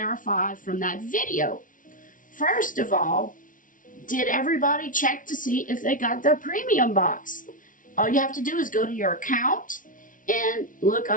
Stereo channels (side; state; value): right; late; 0.38 ms